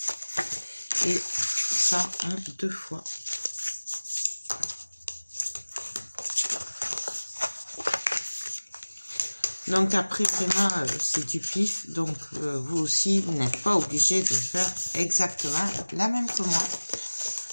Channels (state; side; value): inverted; both; correlation -1.00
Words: Et ça en 2 fois. Donc après, vraiment, c'est du pif. Donc vous aussi, vous n'êtes pas obligé de faire exactement la même que moi.